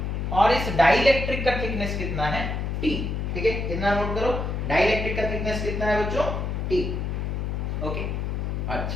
और इस डाइलेक्ट्रिक का थिकनेस कितना है T। ठीक है, कितना नोट करो, डाइलेक्ट्रिक का थिकनेस कितना है बच्चों T। ओके,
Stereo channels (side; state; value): left; noise; hum, 2 dB below the sound